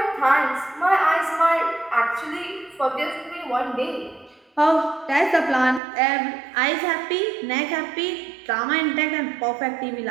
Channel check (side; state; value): left; drops out; at 5.8 s